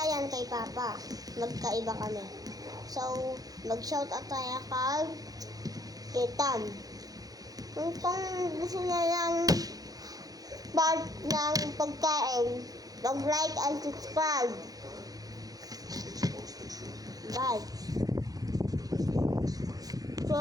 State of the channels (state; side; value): late; left; 0.18 ms